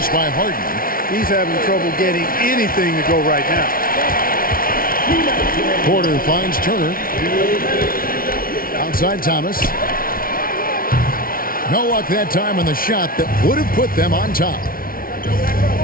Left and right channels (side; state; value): right; late; 0.42 ms